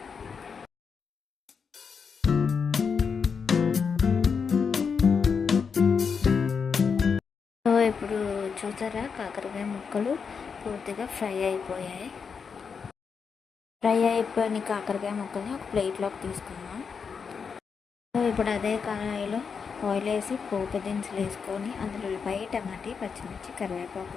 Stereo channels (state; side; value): quieter; right; 5.9 dB